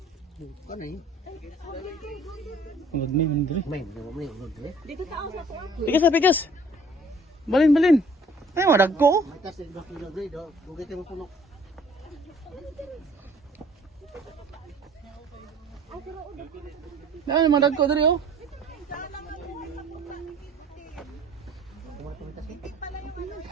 Ano yun? Magmi, mandiri. May unggoy. Dito tao sa to. Pigas na, pigas. Balin, balin. Ay, mo, nagko? Matas yung bakit na grade, oh. Bugay tayo puno. Ano, mga nagko dali, oh. Kumatumitas eh.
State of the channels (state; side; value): normal; both; correlation 0.54